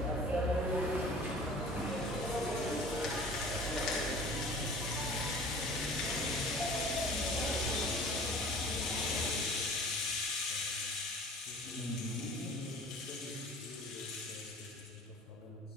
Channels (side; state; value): both; normal; correlation 0.45